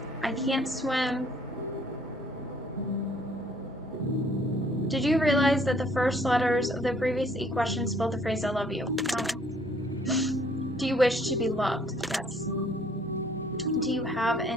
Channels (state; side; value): noise; right; hum, 27 dB below the sound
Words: I can't swim. Did you realize that the first letters of the previous 8 questions spelled the phrase I love you? No. Do you wish to be loved? Yes. Do you have